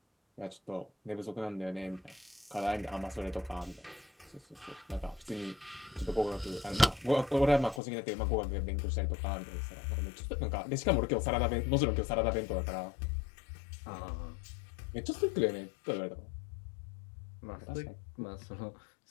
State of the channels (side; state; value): right; drops out; at 7.8 s